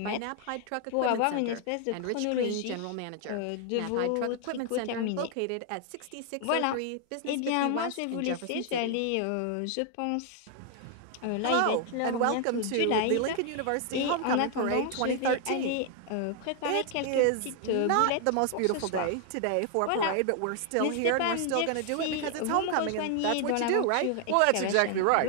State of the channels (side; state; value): both; different; correlation 0.00